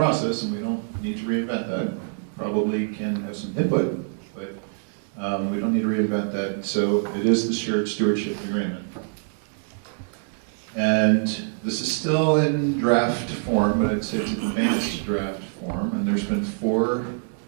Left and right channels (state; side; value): silent; left; digital silence